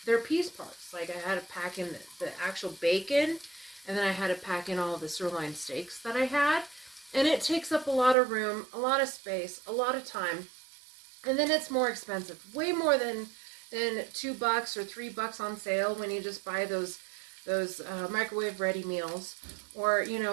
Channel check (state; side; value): drops out; left; at 8.2 s